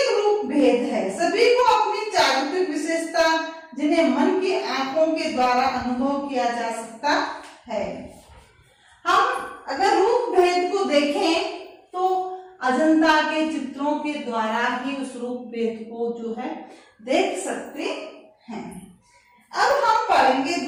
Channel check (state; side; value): identical; both; correlation 1.00